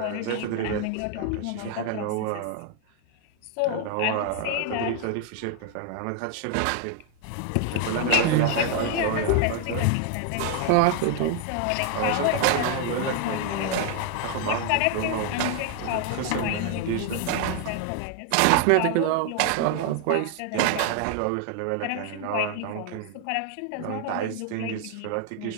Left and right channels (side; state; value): both; different; correlation 0.00